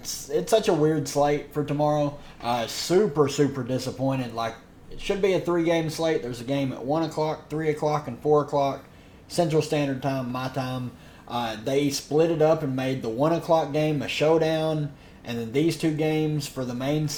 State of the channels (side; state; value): both; identical; correlation 1.00